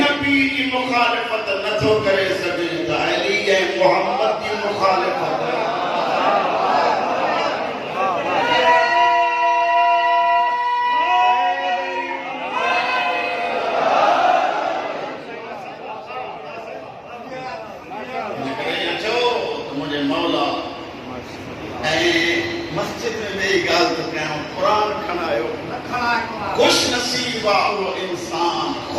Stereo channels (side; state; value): both; identical; correlation 1.00